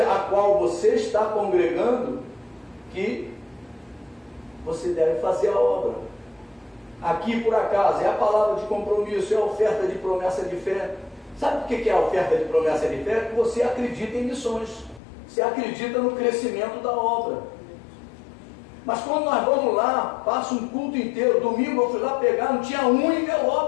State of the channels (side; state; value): right; drops out; at 15.0 s